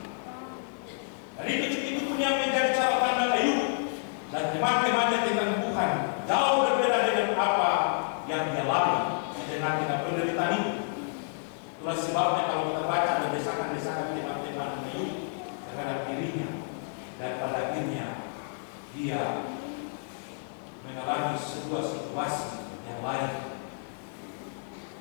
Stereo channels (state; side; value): silent; right; digital silence